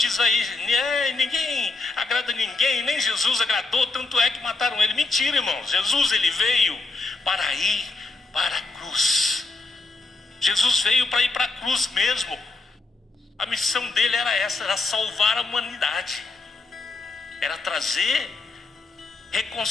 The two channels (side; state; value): right; quieter; 3.5 dB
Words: aí, ninguém agrada ninguém, nem Jesus agradou, tanto é que mataram ele. Mentira, irmãos. Jesus, ele veio para ir para a cruz. Jesus veio para ir para a cruz mesmo. A missão dele era essa, era salvar a humanidade. Era trazer